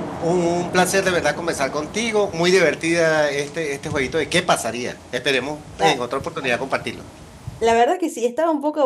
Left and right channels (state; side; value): identical; both; correlation 1.00